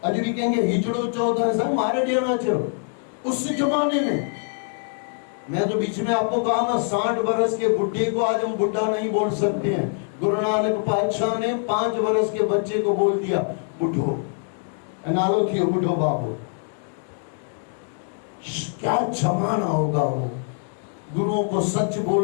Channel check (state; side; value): silent; right; 63 dB below the other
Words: आज भी कहेंगे हिजड़ो 14 सर मारे देना चलो। उस जमाने में मैं तो बीच में आपको कहा ना, 60 वर्ष के बुढ़े को आज हम बुढ़ा नहीं बोल सकते हैं। गुरु नानक पातशाह ने 5 वर्ष के बच्चे को बोल दिया बुढ़ो, नालो थी बुढ़ो बाबू। क्या जमाना होगा वो। गुरुओं को सच